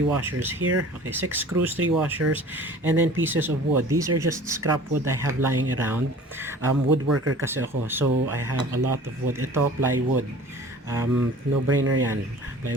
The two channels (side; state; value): both; normal; correlation 0.45